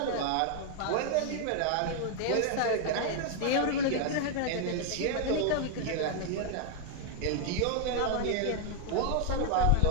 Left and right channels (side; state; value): both; different; correlation 0.00